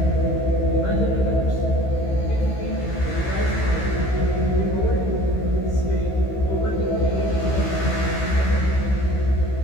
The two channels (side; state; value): right; late; 15 ms